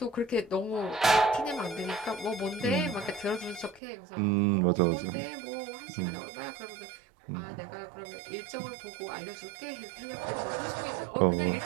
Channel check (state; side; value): drops out; left; at 3.8 s